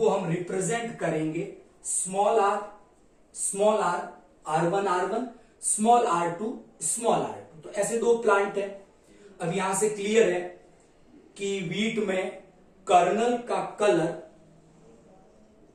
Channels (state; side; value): identical; both; correlation 1.00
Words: हम रिप्रेजेंट करेंगे small are, R1, R1, small R2, small R2। तो ऐसे दो प्लांट है। अब यहां से क्लियर है कि वीट में कर्नल का कलर